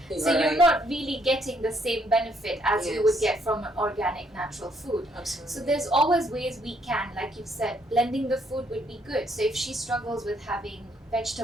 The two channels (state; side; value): normal; both; correlation 0.69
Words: So Right. you're not really getting the same benefit as you would Yes. get from an organic, natural food. Absolutely. So there's always ways we can, like you said, blending the food would be good. So if she struggles with having